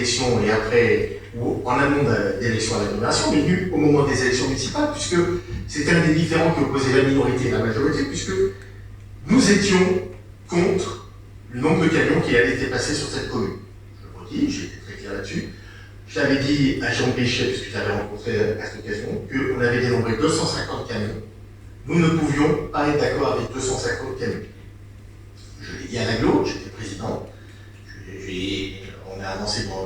et après, ou en amont d'élections à l'agglomération, mais venu au moment des élections municipales, puisque c'était un des différends qui opposait la minorité et la majorité, puisque nous étions contre le nombre de camions qui allaient être passés sur cette commune. Je le redis, j'ai été très clair là-dessus. J'avais dit à Jean Péchet, puisque j'avais rencontré à cette occasion, qu'on avait dénombré 250 camions. Nous ne pouvions pas être d'accord avec 250 camions. Je l'ai dit à l'agglo, j'étais président. On a avancé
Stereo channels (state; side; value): identical; both; correlation 1.00